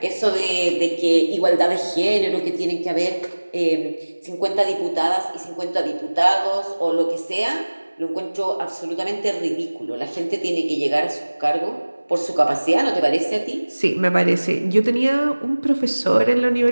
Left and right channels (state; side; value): inverted; both; correlation -1.00